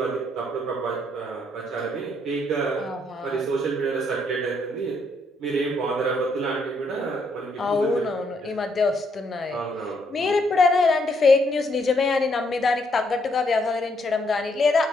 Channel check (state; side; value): normal; both; correlation 0.73